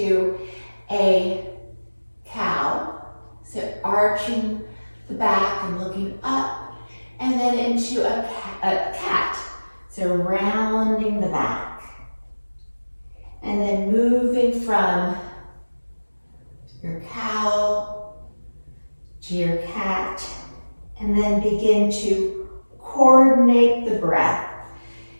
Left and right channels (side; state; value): both; inverted; correlation -1.00